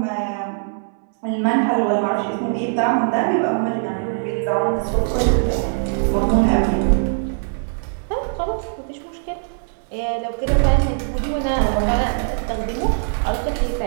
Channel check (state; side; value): silent; left; 63 dB below the other